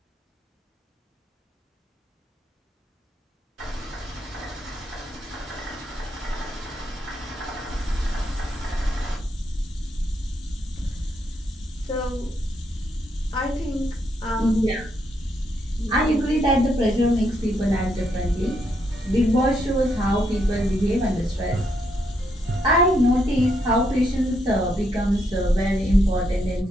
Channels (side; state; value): both; normal; correlation 0.77